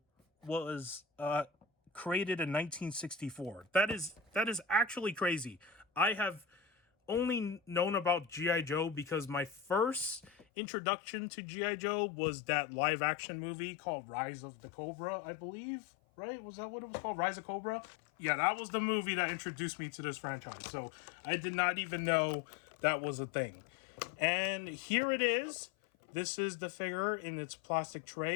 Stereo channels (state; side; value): drops out; right; at 10.5 s